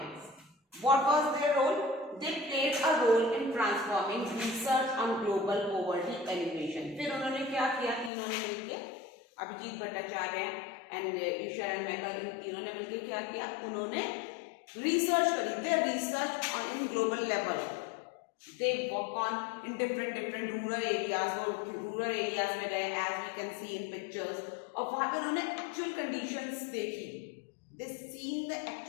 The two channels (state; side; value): drops out; right; at 8.1 s